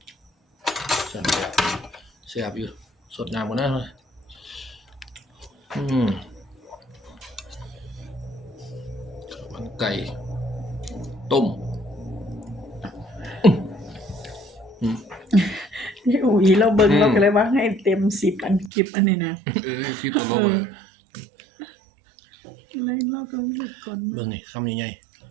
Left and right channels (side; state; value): left; drops out; at 18.7 s